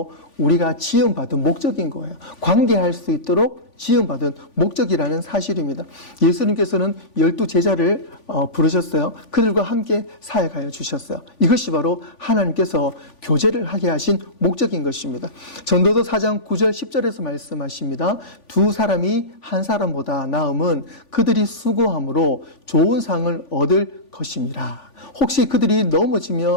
우리가 지음받은 목적인 거예요. 관계할 수 있도록 지음받은 목적이라는 사실입니다. 예수님께서는 12제자를 부르셨어요. 그들과 함께 사역하여 주셨어요. 이것이 바로 하나님께서 교제를 하게 하신 목적인 것입니다. 전도서 4장 9절 10절에서 말씀하십니다. 두 사람이 한 사람보다 나음은 그들이 수고함으로 좋은 상을 얻을 것임이라. 혹시 그들이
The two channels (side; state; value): right; late; 3.5 ms